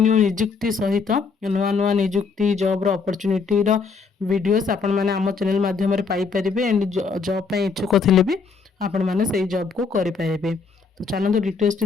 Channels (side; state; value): right; quieter; 5.0 dB